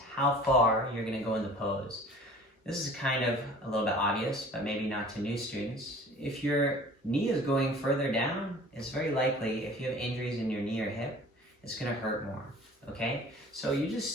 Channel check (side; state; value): both; normal; correlation 0.46